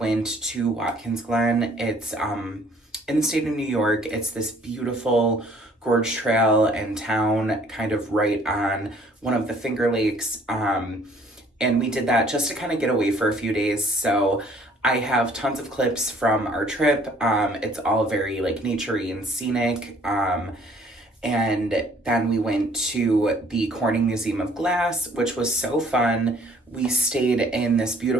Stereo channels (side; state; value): both; normal; correlation 0.59